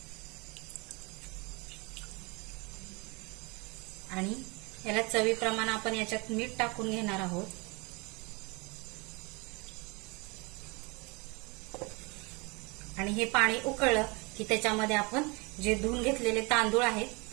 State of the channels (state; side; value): quieter; left; 28.5 dB